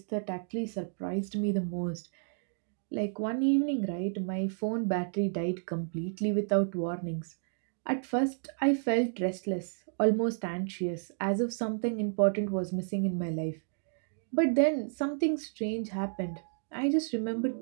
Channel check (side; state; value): left; silent; digital silence